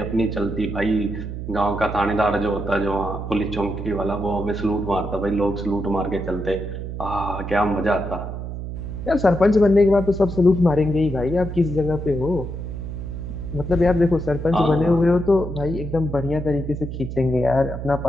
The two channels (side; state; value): right; noise; hum, 7 dB below the sound